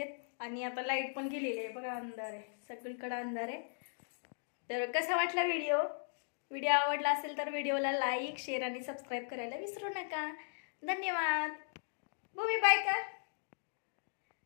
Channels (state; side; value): silent; right; digital silence